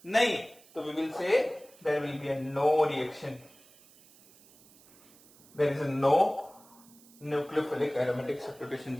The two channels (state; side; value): noise; right; hiss, 26 dB below the sound